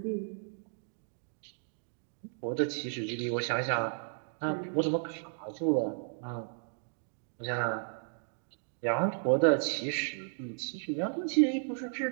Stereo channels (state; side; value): silent; left; digital silence